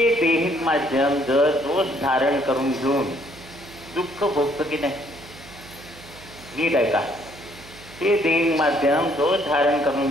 देहिक माध्यम जर दोष धारण करून घेऊन दुःख भोगतं की नाही, नीट आहे का? हे देहिक माध्यम दोष धारण करून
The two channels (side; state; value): right; noise; hum, 20 dB below the sound